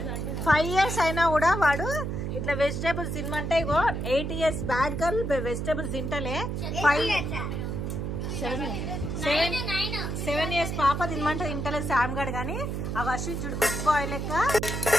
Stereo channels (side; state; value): right; noise; hum, 3 dB below the sound